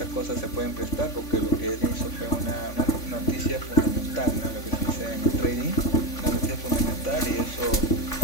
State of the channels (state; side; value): late; right; 3.5 ms